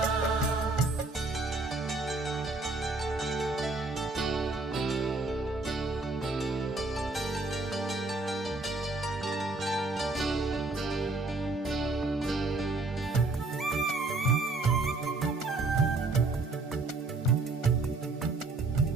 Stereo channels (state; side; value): quieter; left; 3.3 dB